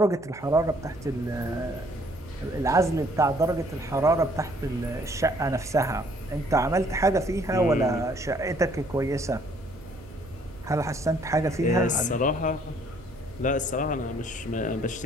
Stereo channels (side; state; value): right; noise; hum, 20 dB below the sound